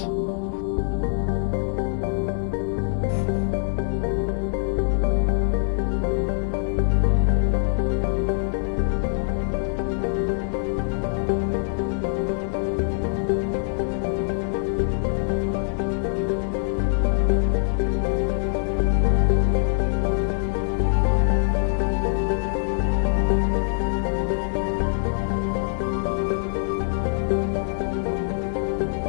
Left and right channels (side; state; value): right; silent; 63 dB below the other